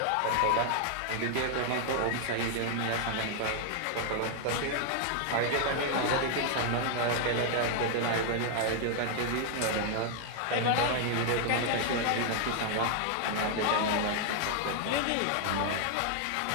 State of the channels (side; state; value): both; different; correlation 0.00